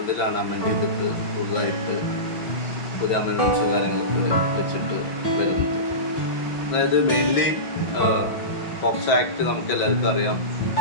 അമെൻഡ് ചെയ്തിട്ട് പുതുതായിട്ട് പുതിയ അമെൻമെൻറ്റ്സ് കാര്യങ്ങളൊക്കെ വെച്ചിട്ട് വരുന്നത്. അതായത് മെയിൻലി പോക്സോ ആക്ട് നമുക്ക് എല്ലാവർക്കും അറിയാം,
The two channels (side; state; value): right; late; 5.9 ms